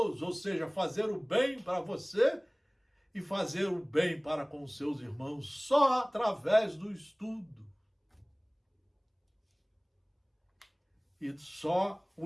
ou seja, fazer o bem para você e fazer o bem para com os seus irmãos, só através do estudo. E só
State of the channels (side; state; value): both; identical; correlation 1.00